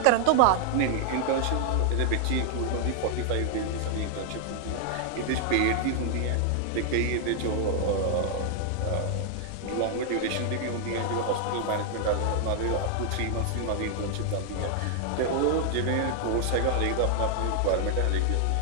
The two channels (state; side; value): different; both; correlation 0.00